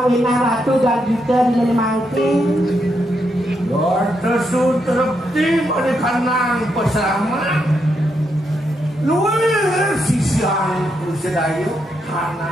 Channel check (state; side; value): normal; both; correlation 0.80